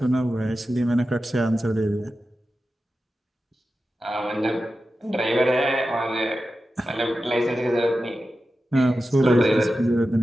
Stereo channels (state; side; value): normal; both; correlation 0.92